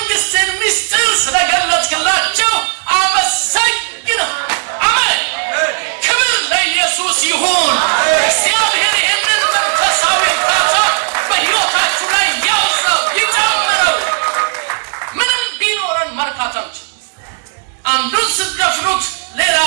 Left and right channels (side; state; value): left; silent; 64 dB below the other